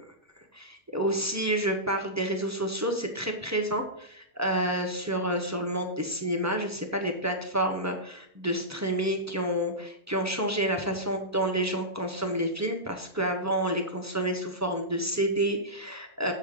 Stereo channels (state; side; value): normal; both; correlation -0.15